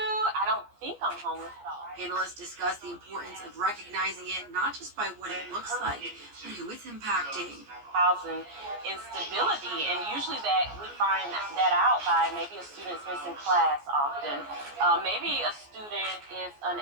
I don't think I'm homeless at all. Panelists discuss the importance of recognizing it not just by what it looks like, but who it's impacting. Housing instability, and usually that we find that out by maybe a student's missing class often. Maybe a student is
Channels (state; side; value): late; left; 14 ms